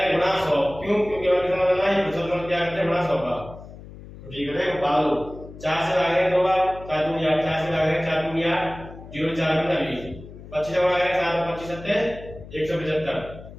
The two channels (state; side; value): noise; left; hum, 16 dB below the sound